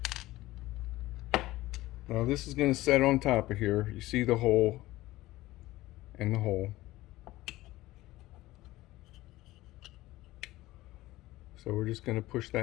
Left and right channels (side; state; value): right; quieter; 17.5 dB